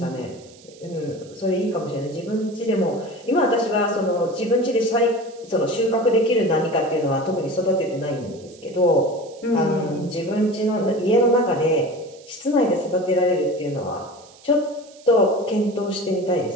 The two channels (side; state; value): right; noise; hiss, 25 dB below the sound